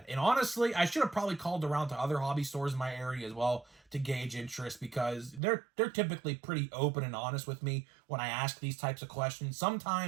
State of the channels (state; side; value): drops out; left; at 5.4 s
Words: And honestly, I should have probably called around to other hobby stores in my area as well to gauge interest, because they're typically pretty open and honest with me when I ask these types of questions.